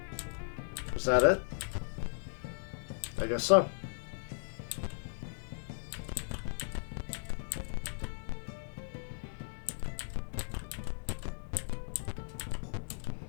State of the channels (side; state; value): right; silent; 53 dB below the other